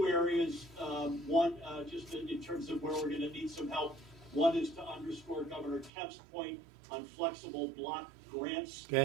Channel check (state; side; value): drops out; left; at 5.9 s